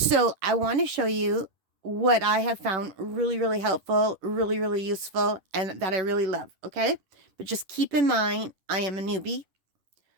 I want to show you what I have found really, really helpful, really, really useful, and that I really love, okay? But just keep in mind, I am a newbie.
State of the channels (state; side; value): late; left; 10 ms